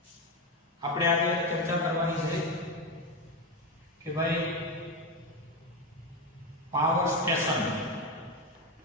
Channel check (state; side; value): normal; both; correlation 0.13